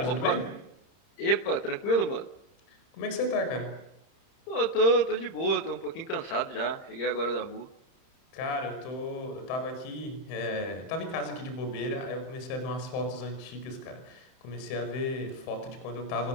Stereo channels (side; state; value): right; late; 30 ms